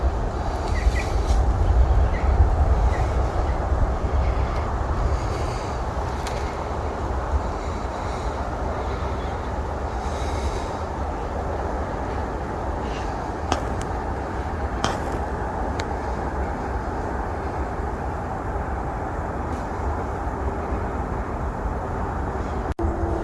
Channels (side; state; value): both; identical; correlation 1.00